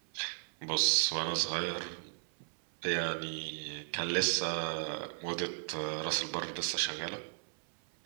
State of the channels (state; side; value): silent; left; 54 dB below the other